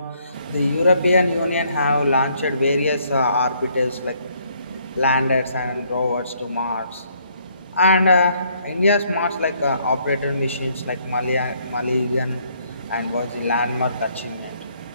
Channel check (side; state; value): both; inverted; correlation -0.67